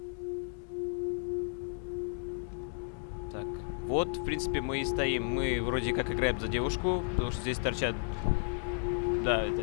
Так, вот, в принципе, мы и стоим. Мы вроде как играем за девушку, потому что здесь торчат... Да, это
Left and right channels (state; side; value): silent; right; digital silence